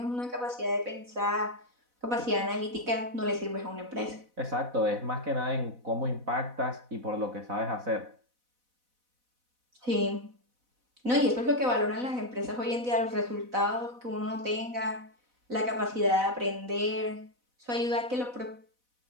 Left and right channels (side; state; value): left; late; 4.0 ms